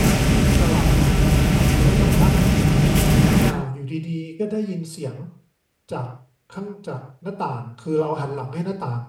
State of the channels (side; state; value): both; identical; correlation 1.00